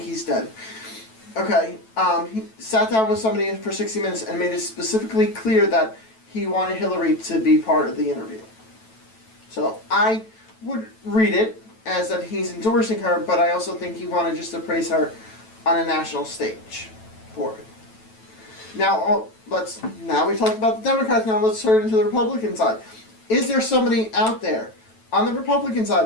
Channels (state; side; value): late; right; 9.1 ms